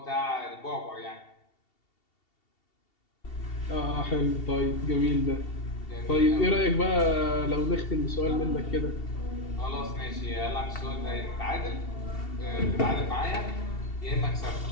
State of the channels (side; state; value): right; late; 2.7 ms